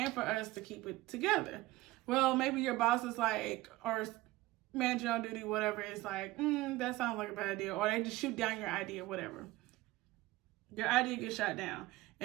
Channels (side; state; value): left; quieter; 18.5 dB